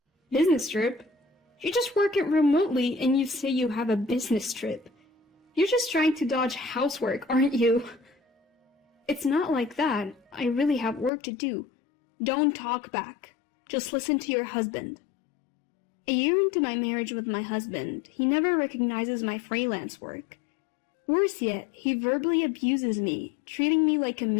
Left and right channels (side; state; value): right; drops out; at 11.1 s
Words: Business trip? You just work it remotely and you say you have a business trip. You're just trying to dodge housework, aren't you? It's not like that. I really have work to do. Don't talk back. Just listen to your husband. A year into my marriage with my husband, he never recognizes my freelance work. Worse yet, he verbally abuses me, treating me like a